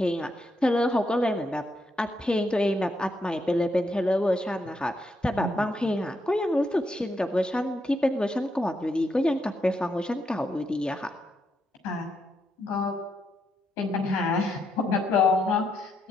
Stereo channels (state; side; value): normal; both; correlation 0.79